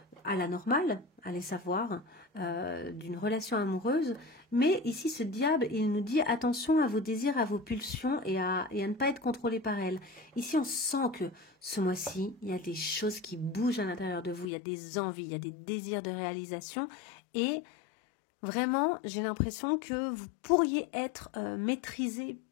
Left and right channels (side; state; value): right; drops out; at 14.5 s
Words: la normale, allez savoir, d'une relation amoureuse. Mais ici, ce diable, il nous dit attention à vos désirs, à vos pulsions et à ne pas être contrôlé par elles. Ici, on sent que ce mois-ci, il y a des choses qui bougent à l'intérieur de vous. Il y a des envies, il y a des désirs de réalisation. Et vraiment, j'ai l'impression que vous pourriez être maîtrisé